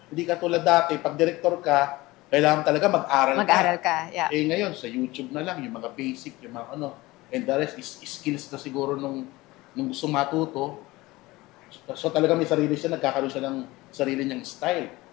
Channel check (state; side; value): quieter; right; 20.1 dB